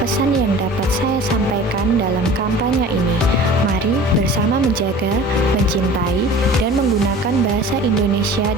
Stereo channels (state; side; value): normal; both; correlation 0.42